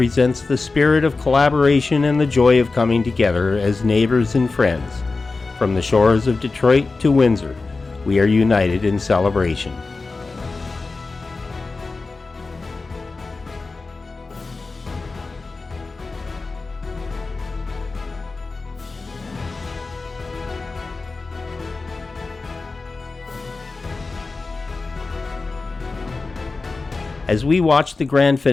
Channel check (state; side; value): quieter; right; 3.8 dB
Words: the spirit of collaboration and the joy of coming together as neighbors and friends. From the shores of Detroit to Windsor, we are united in celebration. As we watch the grand